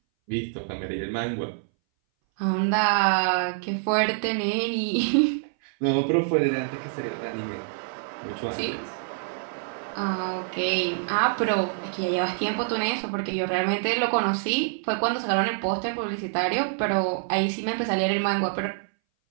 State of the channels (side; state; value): left; silent; 59 dB below the other